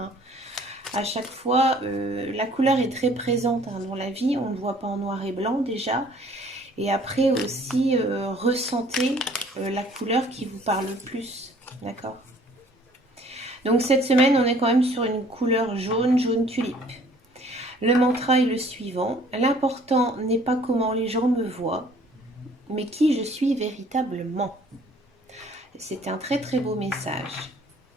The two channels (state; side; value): normal; both; correlation 0.56